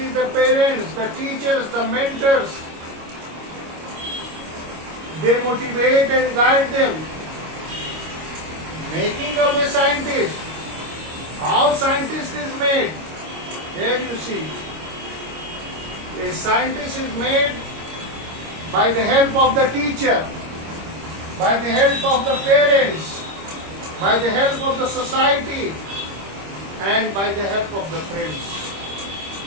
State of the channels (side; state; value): left; late; 25 ms